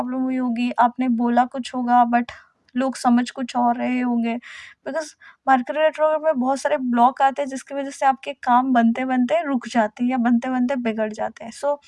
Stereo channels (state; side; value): identical; both; correlation 1.00